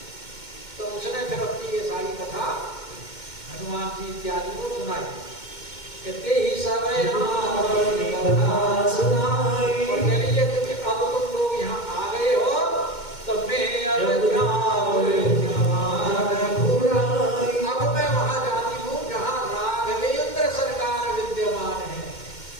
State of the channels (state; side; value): late; right; 2.1 ms